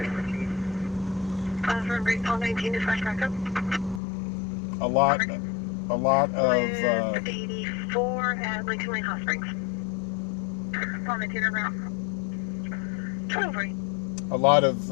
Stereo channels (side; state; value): right; drops out; at 4.0 s